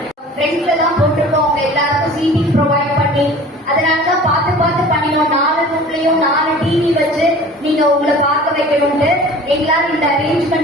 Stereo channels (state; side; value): normal; both; correlation 0.43